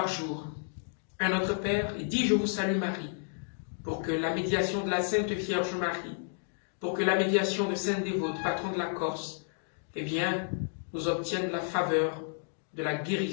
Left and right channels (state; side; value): silent; right; digital silence